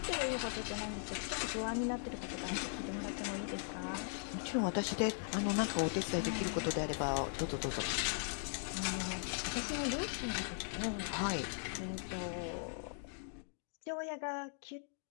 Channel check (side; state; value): right; silent; digital silence